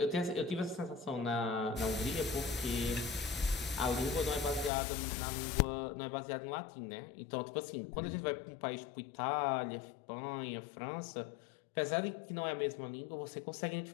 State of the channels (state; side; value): drops out; right; at 4.7 s